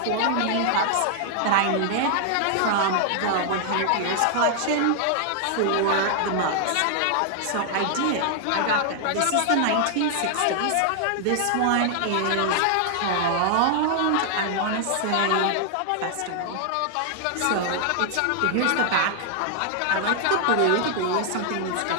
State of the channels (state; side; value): different; both; correlation 0.00